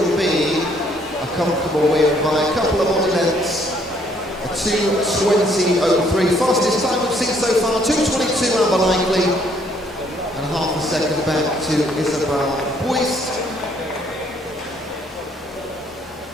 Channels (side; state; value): both; normal; correlation 0.66